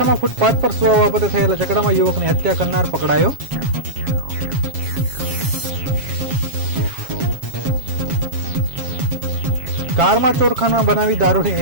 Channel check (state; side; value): late; left; 7.4 ms